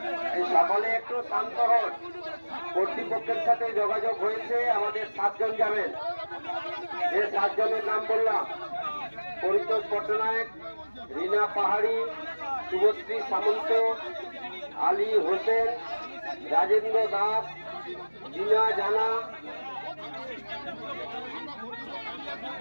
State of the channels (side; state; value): both; inverted; correlation -1.00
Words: সকলে একটু শান্ত হন। কর্তৃপক্ষের সাথে যোগাযোগ হয়েছে, আমাদের 7 জন যাবেন। যে 7 জনের নাম বললাম: পরিতোষ পট্টনায়ক, রীনা পাহাড়ি, শুভশ্রী সামন্ত, আলী হোসেন, রাজেন্দ্র দাস, জিনা জানা,